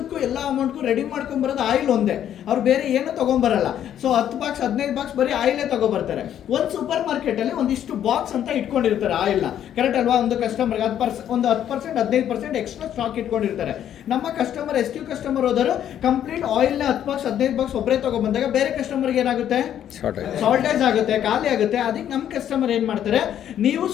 ಎಲ್ಲ ಅಮೌಂಟ್ಗೂ ರೆಡಿ ಮಾಡ್ಕೊಂಡ್ ಬರೋದು ಆಯಿಲ್ ಒಂದೇ, ಅವ್ರು ಬೇರೆ ಏನು ತಗೊಂಡ್ಬರಲ್ಲ. ಸೊ 10 ಬಾಕ್ಸ್ 15 ಬಾಕ್ಸ್ ಬರೀ ಆಯಿಲೇ ತಗೊಬರ್ತಾರೆ. ಒಂದು ಸೂಪರ್ ಮಾರ್ಕೆಟ್ ಅಲ್ಲಿ ಒಂದಿಷ್ಟು ಬಾಕ್ಸ್ ಅಂತ ಇಟ್ಕೊಂಡಿರ್ತಾರೆ ಆಯಿಲ್ ನ, ಕರೆಕ್ಟ್ ಅಲ್ವಾ? ಒಂದು ಕಸ್ಟಮರ್ಗೆ 10% 15% ಎಕ್ಸ್ಟ್ರಾ ಸ್ಟಾಕ್ ಇಟ್ಕೊಂಡಿರ್ತಾರೆ. ನಮ್ಮ ಕಸ್ಟಮರ್ SQ ಕಸ್ಟಮರ್ ಹೋದರು ಕಂಪ್ಲೀಟ್ ಆಯಿಲ್ ನ 10 ಬಾಕ್ಸ್ 15 ಬಾಕ್ಸ್ ಒಬ್ಬರೇ ತಗೊಂಡ್ಬಂದಾಗ ಬೇರೆ ಕಸ್ಟಮರ್ಗೆ ಏನಾಗುತ್ತೆ, ಶಾರ್ಟೇಜ್ ಆಗುತ್ತೆ, ಖಾಲಿ ಆಗುತ್ತೆ. ಅದಕ್ಕೆ ನಮ್ಮ ಕಸ್ಟಮರ್ ಏನ್ ಮಾಡ್ತಾರೆ, ನೀವು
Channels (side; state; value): right; quieter; 10.4 dB